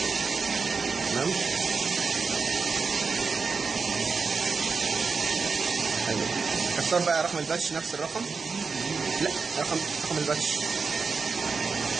تمام. حلو. اختار بقى رقم الباتش، نفس الرقم. لا، رقم الباتش.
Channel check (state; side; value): quieter; left; 4.9 dB